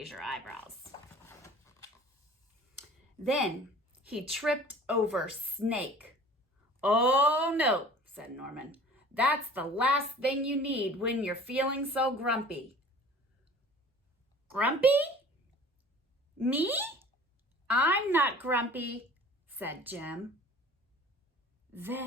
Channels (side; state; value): both; normal; correlation 0.46